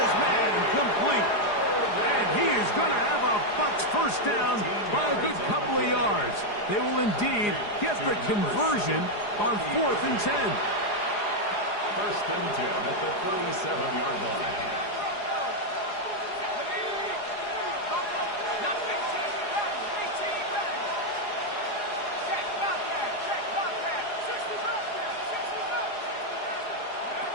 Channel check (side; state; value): right; late; 4.8 ms